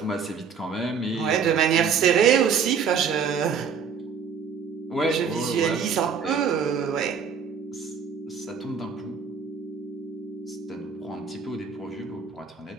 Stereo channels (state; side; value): quieter; left; 6.5 dB